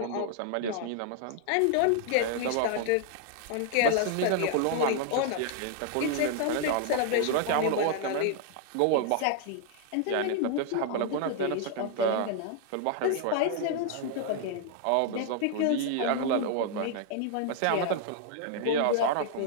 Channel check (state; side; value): different; both; correlation 0.00